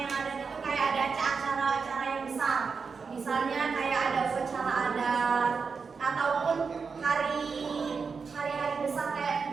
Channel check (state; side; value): quieter; left; 5.2 dB